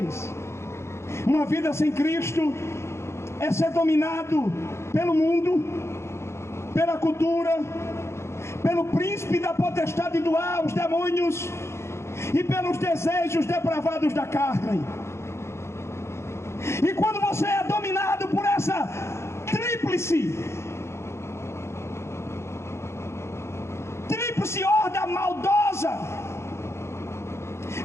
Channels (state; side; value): late; right; 0.13 ms